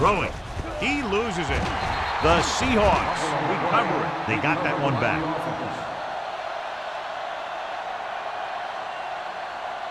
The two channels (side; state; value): both; identical; correlation 1.00